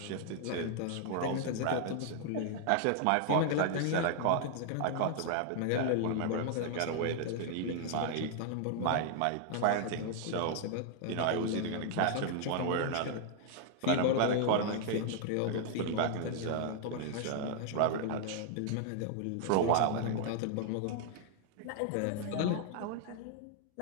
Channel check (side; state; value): both; different; correlation 0.00